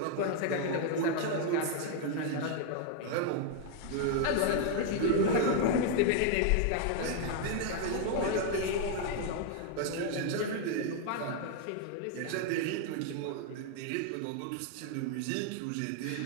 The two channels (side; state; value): both; different; correlation 0.00